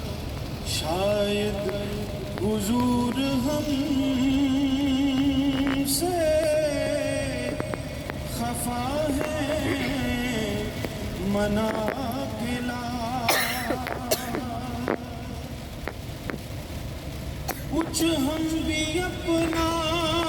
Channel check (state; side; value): identical; both; correlation 1.00